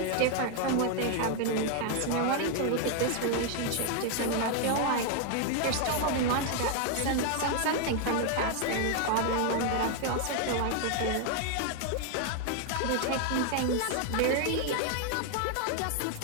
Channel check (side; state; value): both; different; correlation 0.00